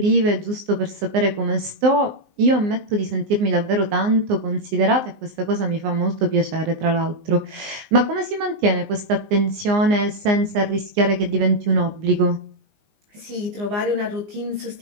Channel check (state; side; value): late; left; 19 ms